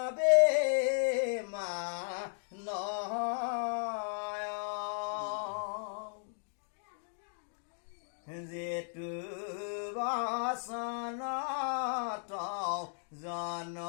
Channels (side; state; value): right; silent; digital silence